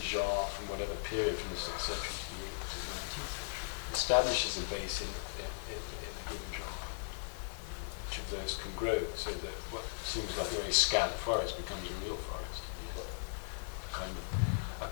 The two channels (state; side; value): silent; right; 53 dB below the other